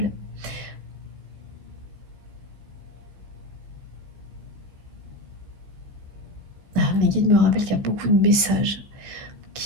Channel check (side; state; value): left; late; 15 ms